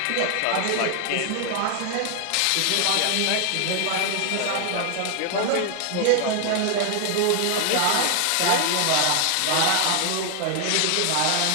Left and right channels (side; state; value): both; different; correlation 0.00